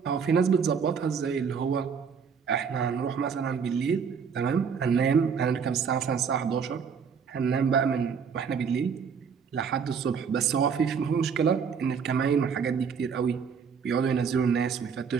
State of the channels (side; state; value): left; quieter; 6.4 dB